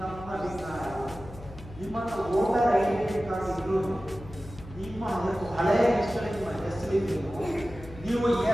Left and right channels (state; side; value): noise; left; hum, 16 dB below the sound